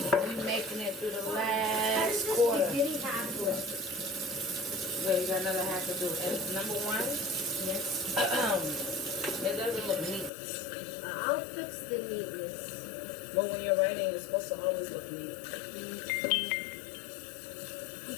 we're making it through the last quarter. Spaghetti half left. Yeah, you got another half to do. And number one, Yes. it doesn't look neat. I'll fix the neatness. Well, when you're writing, it's supposed to always look neat. You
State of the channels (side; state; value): right; drops out; at 10.3 s